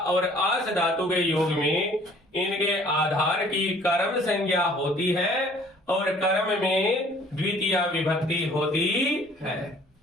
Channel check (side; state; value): both; normal; correlation 0.55